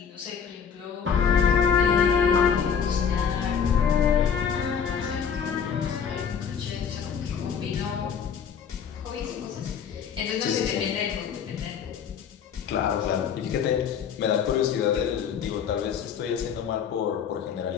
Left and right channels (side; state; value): right; quieter; 7.3 dB